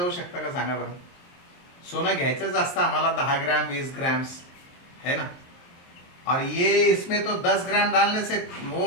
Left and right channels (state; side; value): late; right; 23 ms